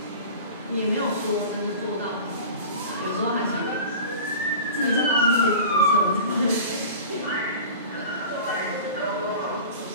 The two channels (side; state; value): both; inverted; correlation -0.36